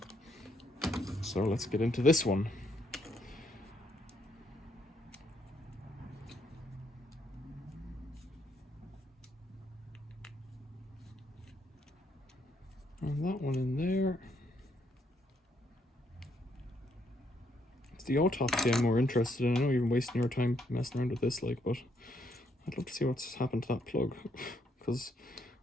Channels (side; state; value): both; normal; correlation 0.73